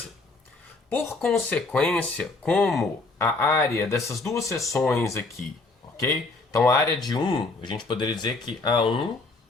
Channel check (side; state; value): right; quieter; 3.5 dB